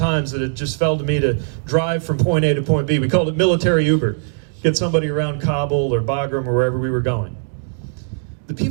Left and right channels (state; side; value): silent; left; digital silence